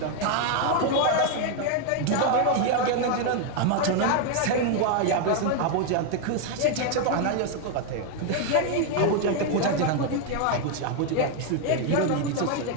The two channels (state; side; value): different; both; correlation 0.01